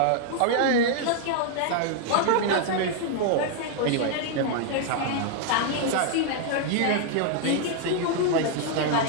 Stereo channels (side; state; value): both; different; correlation 0.00